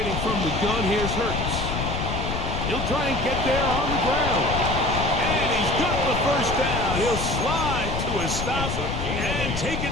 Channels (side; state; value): left; noise; rumble, 3 dB below the sound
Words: from the gun, here's Hurts. He'll try and get there on the ground. And he's got the first down. He'll slide to a stop and take it